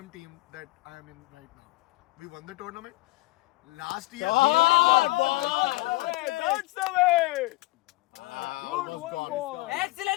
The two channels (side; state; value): right; quieter; 21.1 dB